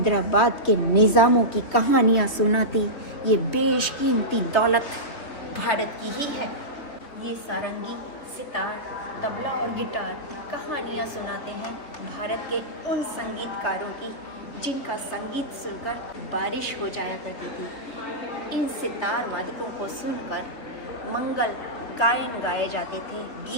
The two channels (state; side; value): late; right; 3.3 ms